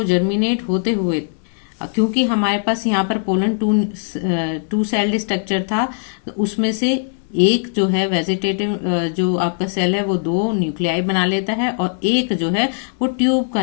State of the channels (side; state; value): right; silent; digital silence